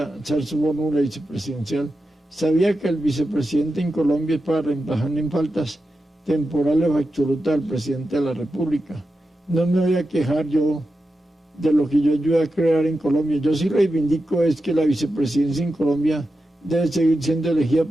ser su fórmula vicepresidencial, sabía que el vicepresidente en Colombia es para reemplazar en faltas temporales o absolutas al presidente de la República. No me voy a quejar yo de lo que yo ayudé a crear en Colombia. Yo sí reivindico es que la vicepresidencia en Colombia debe seguir siendo elegida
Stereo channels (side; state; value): both; normal; correlation 0.90